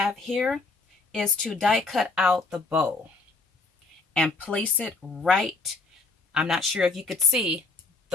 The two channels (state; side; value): quieter; right; 3.7 dB